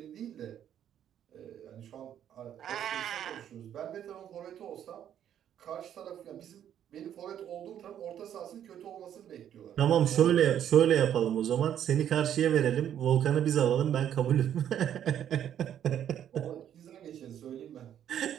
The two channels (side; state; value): left; quieter; 10.0 dB